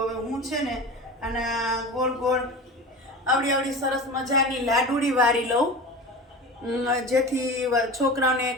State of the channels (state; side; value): normal; both; correlation 0.31